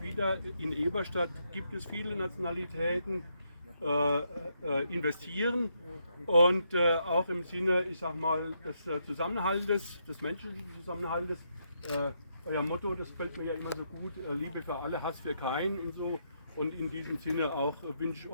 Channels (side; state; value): both; inverted; correlation -0.78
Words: wieder in Eberstadt, gibt es viele Nationalitäten, investieren und auch im Sinne, ich sag mal, des Zusammenhaltes, des menschlichen Zusammenhaltes. Euer Motto, das gefällt mir ja immer so gut, Liebe für alle, Hass für keinen und so. Und in diesem Sinne auch wünsche ich